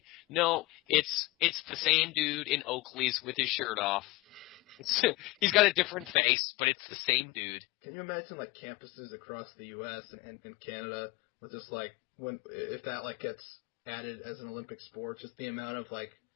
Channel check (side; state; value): right; drops out; at 6.2 s